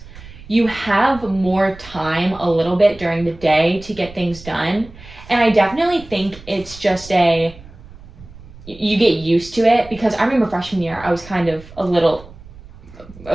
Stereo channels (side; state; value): right; noise; rumble, 19 dB below the sound